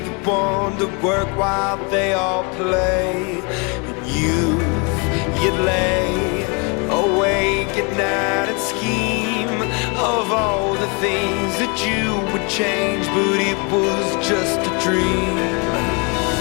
one to work while they all play. In youth, you'd lay awake at night and scheme of all the things that you would change, but it was just a dream.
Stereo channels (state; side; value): quieter; right; 32.8 dB